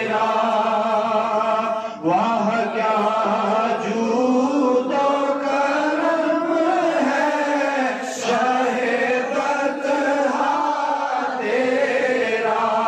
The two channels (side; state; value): both; identical; correlation 1.00